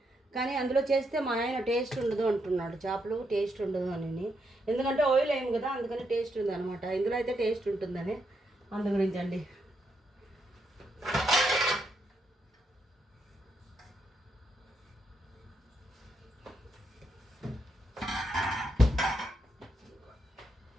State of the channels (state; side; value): normal; both; correlation 0.80